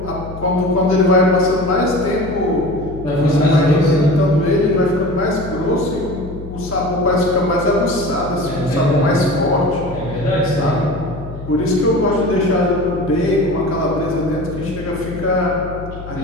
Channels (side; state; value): left; noise; hum, 12 dB below the sound